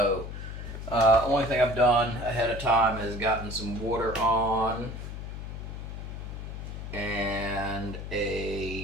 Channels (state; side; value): noise; left; hum, 8 dB below the sound